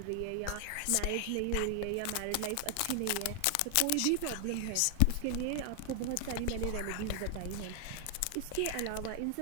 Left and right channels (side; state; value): both; different; correlation 0.00